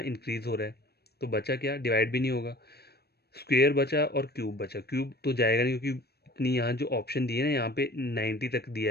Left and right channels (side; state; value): right; late; 0.47 ms